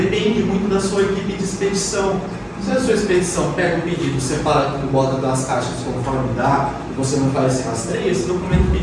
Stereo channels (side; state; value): both; identical; correlation 1.00